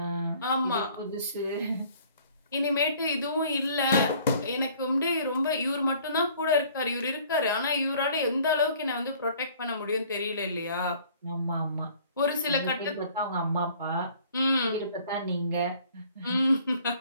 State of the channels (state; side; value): inverted; both; correlation -0.55